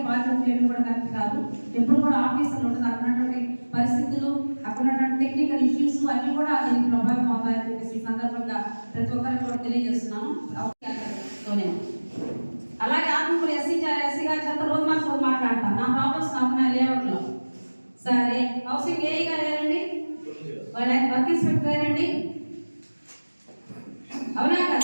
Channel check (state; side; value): inverted; both; correlation -1.00